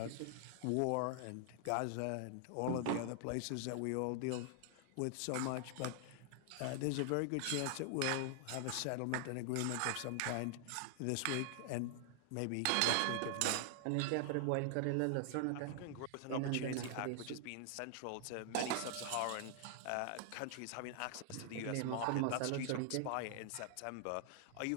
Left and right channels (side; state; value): both; different; correlation 0.00